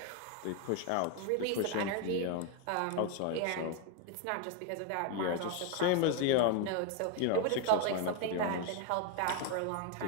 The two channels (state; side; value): different; both; correlation 0.01